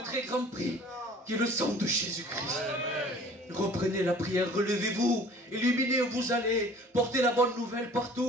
très grand prix, qui est le sang de Jésus-Christ. Reprenez la prière, relevez-vous, illuminez où vous allez, portez la bonne nouvelle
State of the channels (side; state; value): both; normal; correlation 0.49